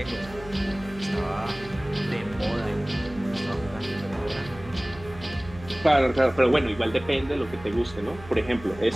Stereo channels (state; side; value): noise; right; hum, 16 dB below the sound